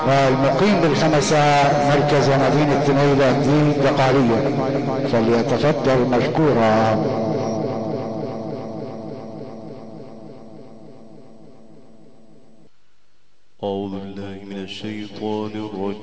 والمقيم بالخمسة مركز مدينة نيل الدين دقهلية، فليتفضل مشكورا. أعوذ بالله من الشيطان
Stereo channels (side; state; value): both; identical; correlation 1.00